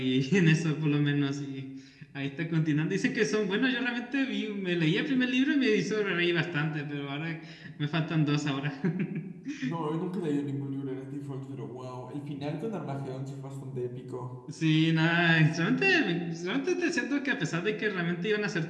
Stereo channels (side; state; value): both; identical; correlation 1.00